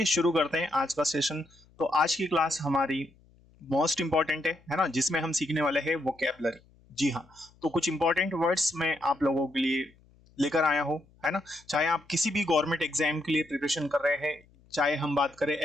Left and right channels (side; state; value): left; noise; hum, 29 dB below the sound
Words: शुरू करते हैं आज का सेशन। तो आज की क्लास हमारी मोस्ट इंपॉर्टेंट है ना, जिसमें हम सीखने वाले हैं वोकैबुलरी। जी हाँ, तो कुछ इंपॉर्टेंट वर्ड्स मैं आप लोगों के लिए लेकर आया हूँ, है ना। चाहे आप किसी भी गवर्नमेंट एग्जाम के लिए प्रिपरेशन कर रहे हैं, चाहे हम बात करें